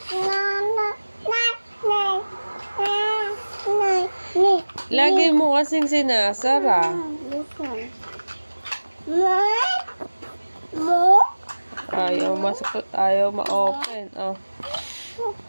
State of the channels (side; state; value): both; inverted; correlation -1.00